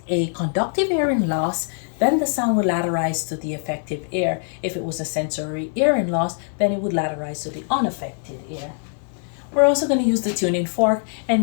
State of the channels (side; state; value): right; silent; 58 dB below the other